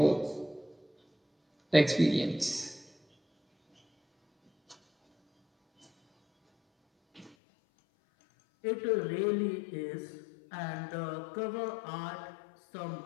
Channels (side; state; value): right; drops out; at 7.4 s